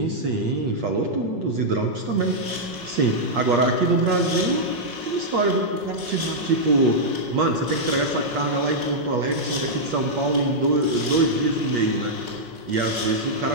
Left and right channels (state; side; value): late; left; 5.5 ms